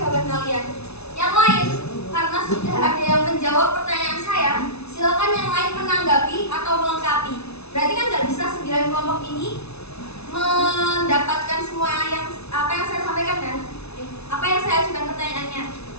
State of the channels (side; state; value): right; late; 0.80 ms